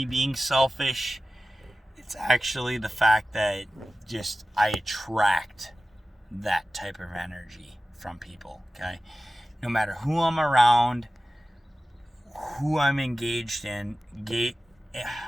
being selfish. It's actually the fact that just I attract that type of energy from people, okay? No matter who I'm around, who I'm engaged in a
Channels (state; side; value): normal; both; correlation 0.95